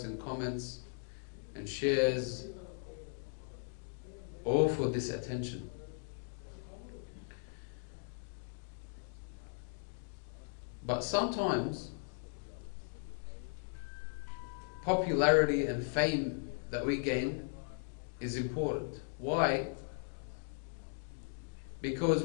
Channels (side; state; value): right; silent; digital silence